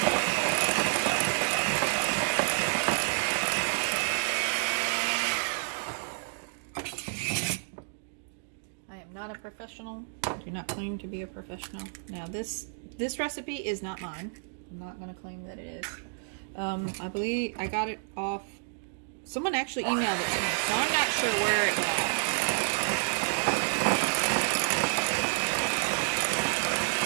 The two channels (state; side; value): silent; left; digital silence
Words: Not a professional. I do not claim to be a professional. Now this recipe is not mine. I'm not going to claim that it is. I believe I got it off. Someone actually emailed it to me, so I'm not sure where it got.